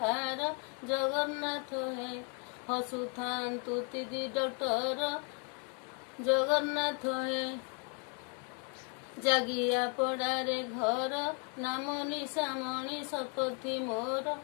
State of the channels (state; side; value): quieter; right; 38.8 dB